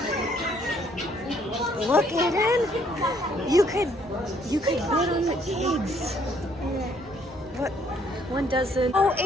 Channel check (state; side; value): normal; both; correlation 0.65